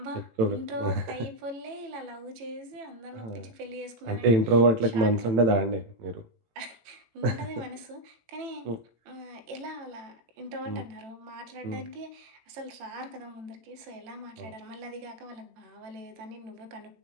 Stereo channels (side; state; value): left; late; 18 ms